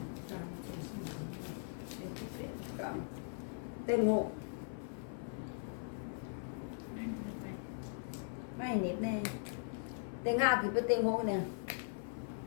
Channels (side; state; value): right; silent; 51 dB below the other